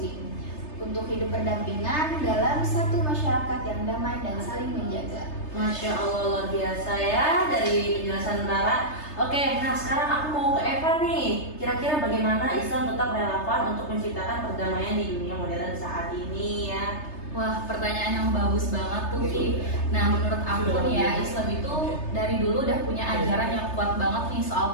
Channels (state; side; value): late; right; 3.3 ms